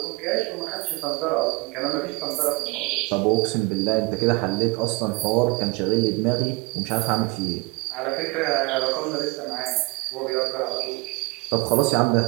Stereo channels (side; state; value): left; quieter; 25.8 dB